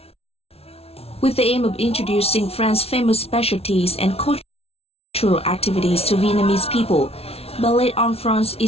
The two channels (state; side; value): late; right; 0.29 ms